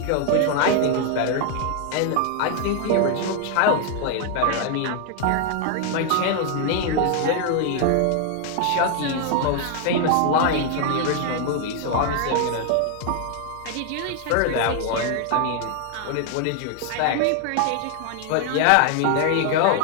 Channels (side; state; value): both; different; correlation 0.00